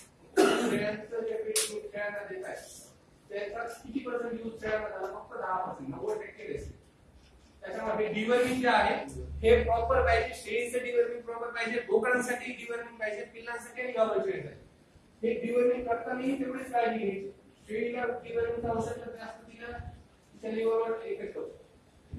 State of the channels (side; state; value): both; identical; correlation 1.00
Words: शेळ्यांचं जे फीडिंग शेळ्यांना देत आहे त्याचा किती पर्सेंट यूज शेळ्यांना झाला, फक्त 10%. 90% त्याच्यामध्ये डिवर्मिंग जे आहे हे प्रॉपर पाहिजे. शेळीचं डिवर्मिंग प्रॉपर पाहिजे. पाहिजे, बोकडांसाठी डिवर्मिंग पाहिजे, पिल्लांसाठी आणि गावरान हे डिवर्मिंग करतानाही तेवढीच काळजी घ्यायची. शेळीला डिवर्मिंगचं औषध जास्त दिलं तिच्या लिव्हरवर इफेक्ट होतो.